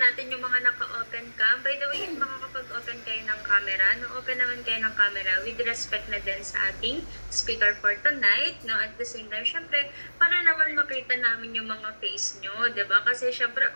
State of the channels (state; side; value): inverted; both; correlation -1.00